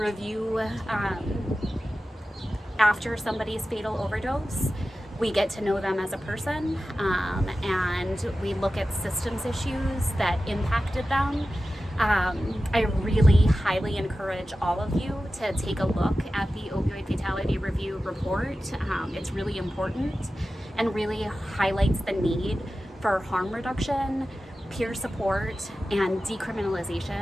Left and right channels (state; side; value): normal; both; correlation 0.94